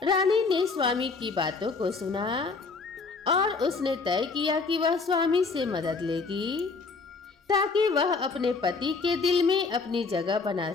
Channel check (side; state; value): right; quieter; 4.4 dB